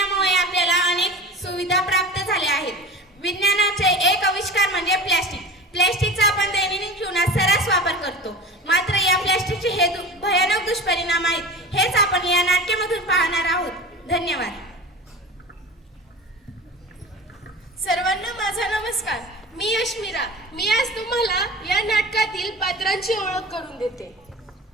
आपल्याला अनेक सुविधा प्राप्त झाल्या आहेत. विज्ञानाचे एक आविष्कार म्हणजे प्लॅस्टिक. प्लॅस्टिकचा आपण दैनंदिन जीवनात सर्रास वापर करतो. मात्र या प्लॅस्टिकचे हे भयानक दुष्परिणाम आहेत. हेच आपण या नाट्यामधून पाहणार आहोत. धन्यवाद. सर्वांना माझा नमस्कार. मी अश्मिरा. मी आज तुम्हाला या नाटकातील पात्रांची ओळख करून देते.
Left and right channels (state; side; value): normal; both; correlation 0.33